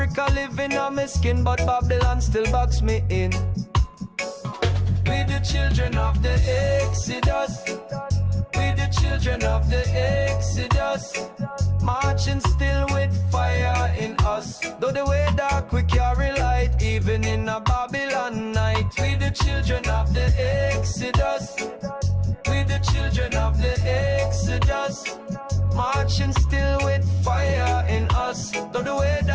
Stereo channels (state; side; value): identical; both; correlation 1.00